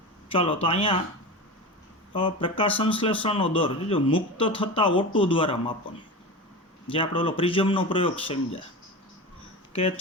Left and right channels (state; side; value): normal; both; correlation 0.26